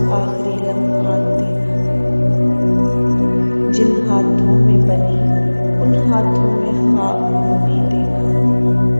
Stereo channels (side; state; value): both; inverted; correlation -1.00